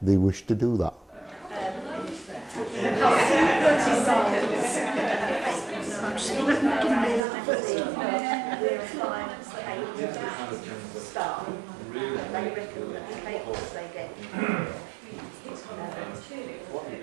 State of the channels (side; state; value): left; drops out; at 7.2 s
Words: they wish to do that.